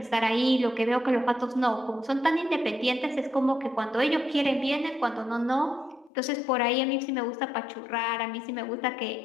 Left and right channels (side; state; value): right; drops out; at 6.1 s